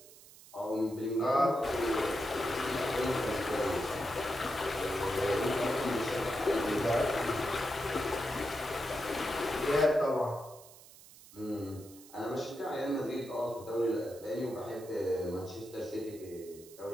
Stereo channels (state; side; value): noise; right; hiss, 20 dB below the sound